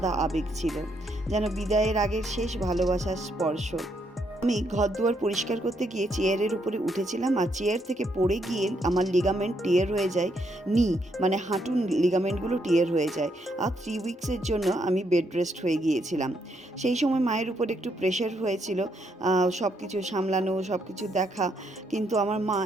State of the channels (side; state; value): both; normal; correlation 0.75